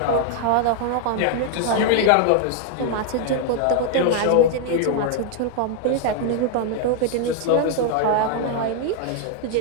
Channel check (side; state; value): both; different; correlation 0.00